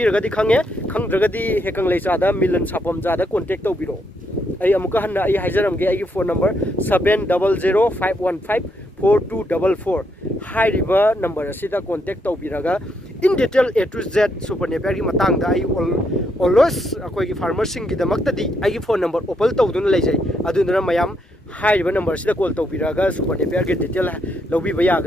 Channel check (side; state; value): both; normal; correlation 0.77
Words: खंगे खंद्रगदी हेकंग लेचादा मिलन सापम जादा कांटेक्ट तौबिरो आई अमुका हन्ना आई हाइजरमगे आई फोन नंबर 7005154244 हाइरिबा नंबर असिदा कांटेक्ट तौबिरगा in detail A to Z super Napier की मतंगदा आई ऑलवेज अखोइगी फार्मर सिंग की दमक्तदी आई फोन नंबर ओपन तौदुना लेजै अदुना मयाम हाइरिबा नंबर सिदा कॉल तौबिरगा सुपर नेपियर की डिटेल लौबिबा